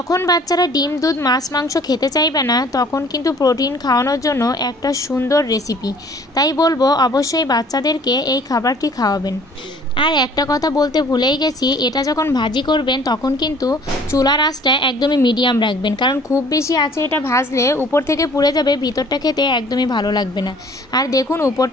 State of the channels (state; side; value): normal; both; correlation 0.53